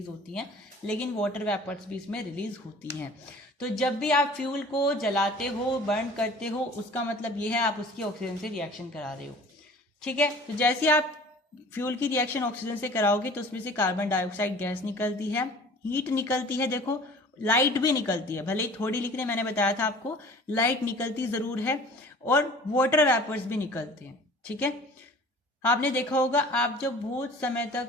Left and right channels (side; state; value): both; normal; correlation 0.46